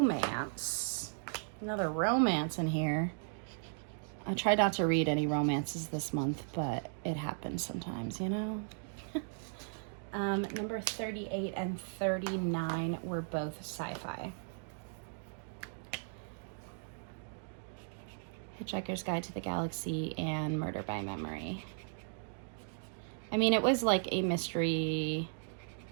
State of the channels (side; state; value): left; silent; digital silence